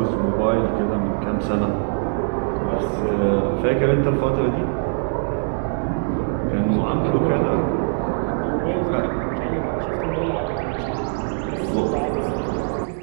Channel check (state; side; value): silent; left; 58 dB below the other